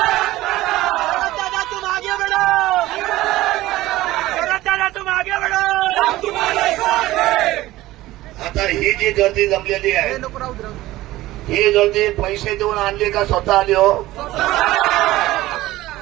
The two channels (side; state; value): left; quieter; 16.8 dB